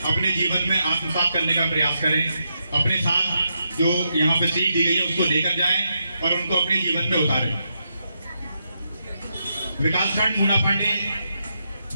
अपने जीवन में आत्मसात करने का प्रयास करें। अपने साथ जो यहाँ पे सीख दी गई है उसको लेकर जाएं और उनको अपने जीवन में उतारें। विकासखंड मूना पांडे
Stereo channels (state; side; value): inverted; both; correlation -0.83